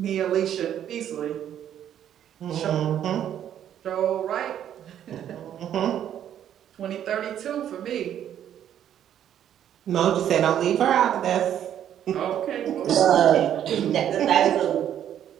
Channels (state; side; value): quieter; left; 10.3 dB